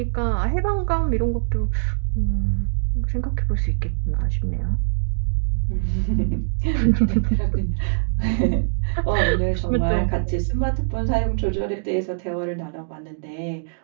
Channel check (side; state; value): left; silent; digital silence